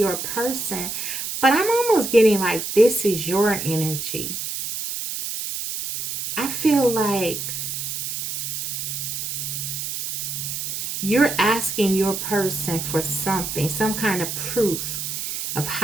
person, but I'm almost getting like this is your energy. I feel like you're asking your person for something, some kind of proof of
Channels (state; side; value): noise; right; hiss, 4 dB below the sound